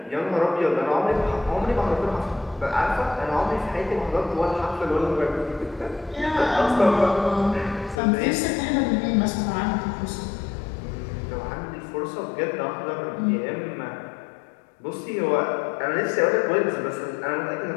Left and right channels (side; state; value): right; drops out; at 8.0 s